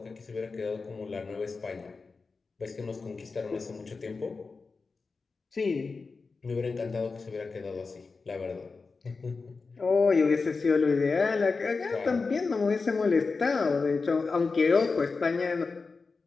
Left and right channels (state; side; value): quieter; right; 4.3 dB